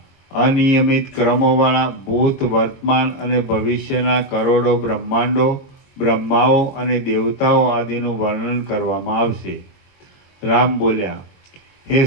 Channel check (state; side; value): late; right; 22 ms